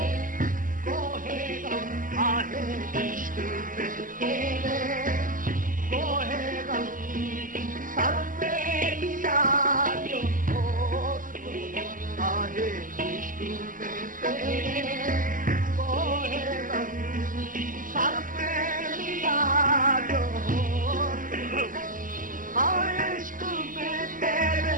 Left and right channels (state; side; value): late; left; 0.39 ms